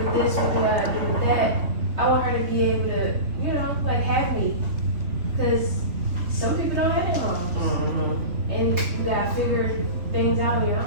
this? What do I do with that? I want her to be able to, you know, like have me, because some people don't have their moms. And you gotta figure things out on your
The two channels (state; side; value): late; left; 3.7 ms